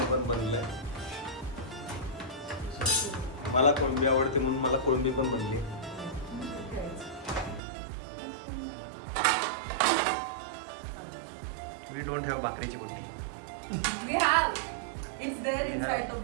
पण बनलंय. मला कोळंबी आवडते म्हणून मला कोळंबी पण बनली. वी डोंट हॅव भाकरीची बुट्टी. We have. It's there We inside have. the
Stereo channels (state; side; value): drops out; left; at 7.6 s